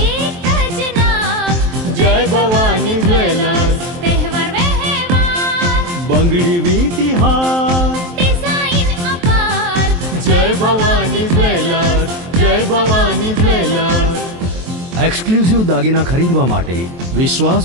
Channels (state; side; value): late; left; 23 ms